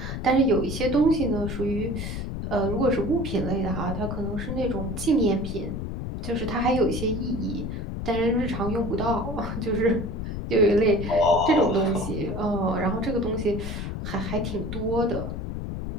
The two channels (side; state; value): left; noise; rumble, 5 dB below the sound